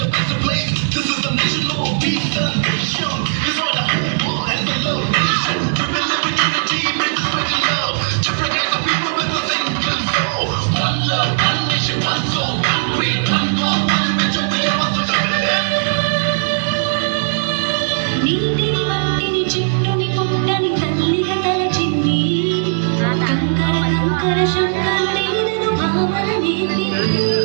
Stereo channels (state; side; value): silent; left; 68 dB below the other